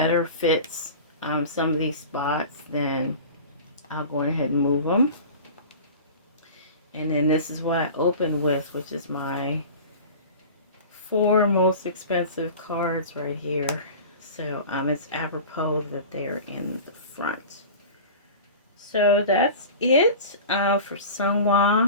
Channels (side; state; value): both; inverted; correlation -0.36